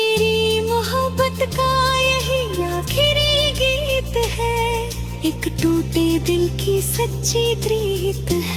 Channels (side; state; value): both; identical; correlation 1.00